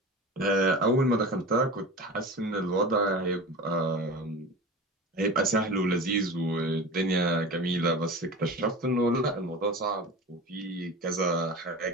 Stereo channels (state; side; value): normal; both; correlation 0.32